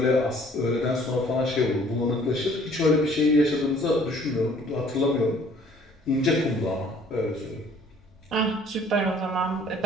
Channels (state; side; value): normal; both; correlation 0.56